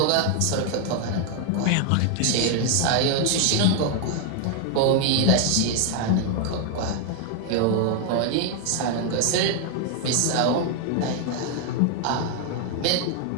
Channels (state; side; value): different; both; correlation 0.00